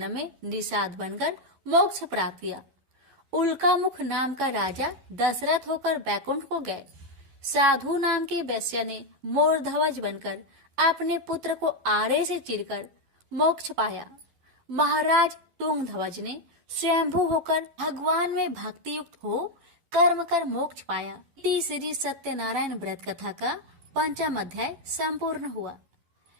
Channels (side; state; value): left; late; 11 ms